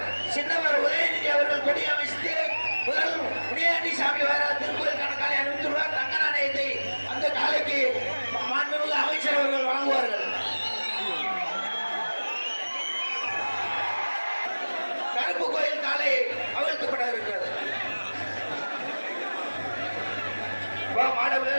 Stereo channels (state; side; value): inverted; both; correlation -1.00